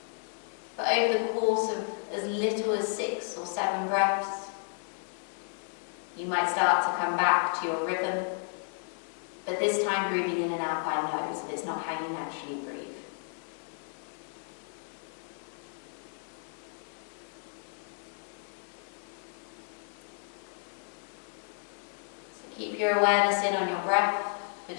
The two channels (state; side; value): silent; right; 56 dB below the other